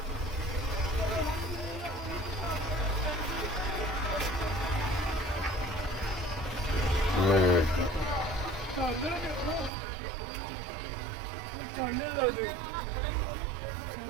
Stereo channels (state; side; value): drops out; left; at 9.7 s